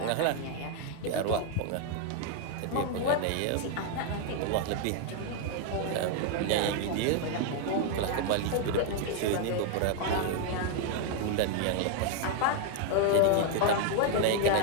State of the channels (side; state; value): both; different; correlation 0.00